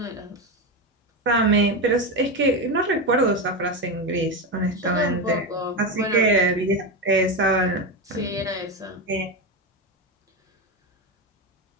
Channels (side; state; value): both; normal; correlation 0.14